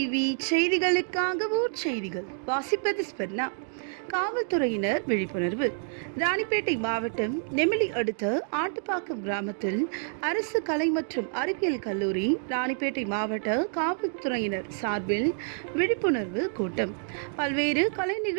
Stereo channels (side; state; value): left; silent; 59 dB below the other